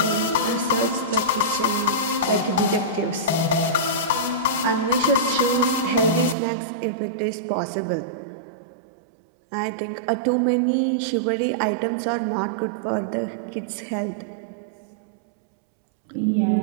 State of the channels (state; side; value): drops out; left; at 6.4 s